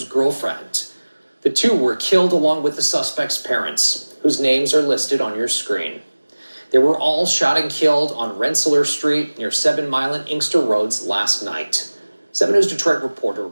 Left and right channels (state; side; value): inverted; both; correlation -1.00